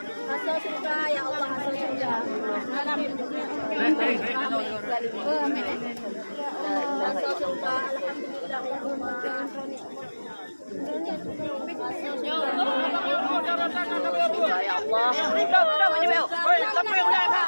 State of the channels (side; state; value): both; inverted; correlation -1.00